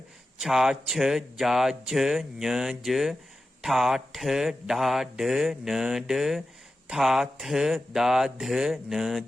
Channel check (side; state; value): both; normal; correlation 0.93